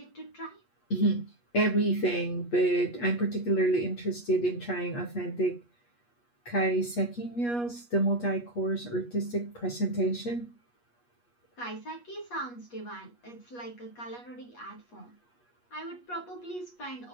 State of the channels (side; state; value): right; late; 8.3 ms